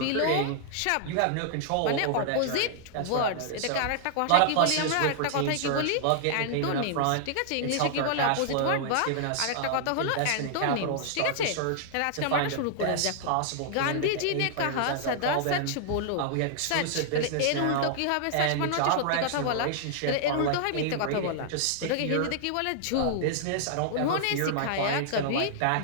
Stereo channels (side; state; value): both; different; correlation -0.01